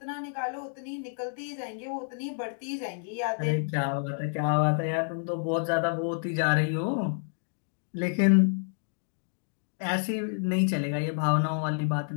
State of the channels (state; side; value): silent; right; 58 dB below the other